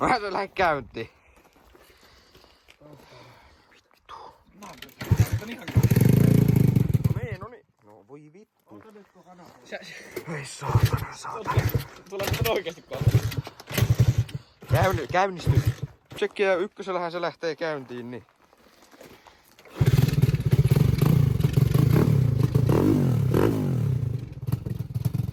se lähde käyntiin. Vittu. No niin. No voi vittu. Ei saatana. Tulee nyt oikeesti kohta. Käynnistys. Tsekkiä ykkösellähän se lähtee käyntiin, niin.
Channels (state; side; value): identical; both; correlation 1.00